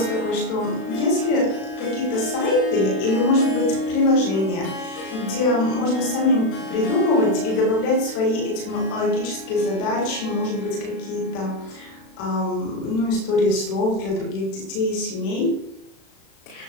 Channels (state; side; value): late; right; 36 ms